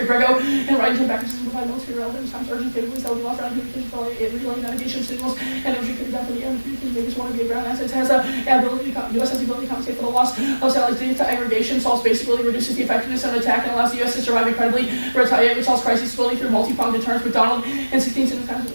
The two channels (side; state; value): both; inverted; correlation -1.00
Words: Grego, and right into backup systems provide military relevance times urgent capabilities that will be lost around communications for relaying navigation signals and energy could be done from the air and communications maybe one of the ground assets has the ability to U.S. has the ability to compensate for the loss of satellites data aggregation, solves basically reduces the effectiveness of an attack and allows the U.S. to survive incredibly, retaliate, resolves crises slowly through multi-pronged deterrence. McDonald and 16 times